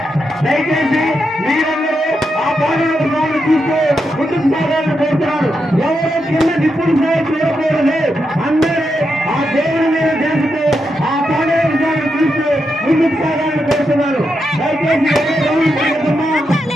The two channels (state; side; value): normal; both; correlation 0.85